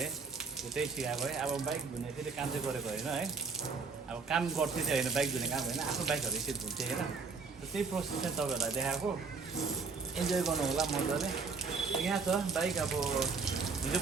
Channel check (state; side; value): quieter; left; 4.7 dB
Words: त्यही सिकाएको है। अब बाइक धुने फेरि काम चाहिँ गरेको होइन है, अब काम गर्थेँ चाहिँ होइन, बाइक धुने काम होइन, आफ्नो बाइकहरू यसरी धुन्थेँ होइन। र त्यही प्रोसेस चाहिँ तपाईँहरूलाई देखाएको, इन्जोय गर्नु होला मजाले। यहाँ छ बाइक, अब हिजो